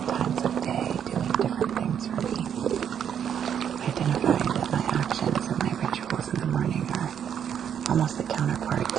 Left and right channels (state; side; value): quieter; left; 8.6 dB